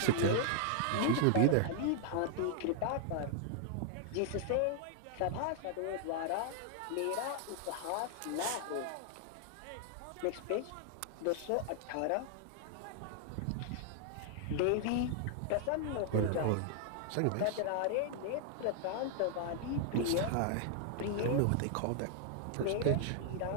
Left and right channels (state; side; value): different; both; correlation 0.00